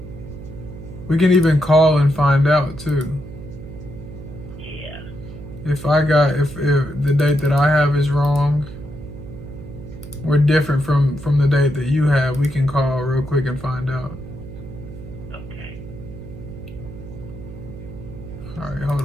We can even call and find out too. Yeah. If the date that I have is wrong, or different from the date that you have, we can call real quick and find out. Okay. All right, hold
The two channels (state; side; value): noise; right; hum, 13 dB below the sound